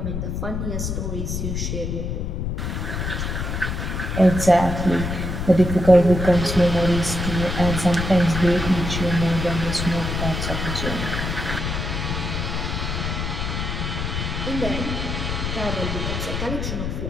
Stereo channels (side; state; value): left; noise; rumble, 3 dB below the sound